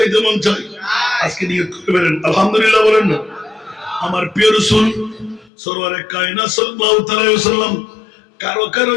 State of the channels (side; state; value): right; drops out; at 5.5 s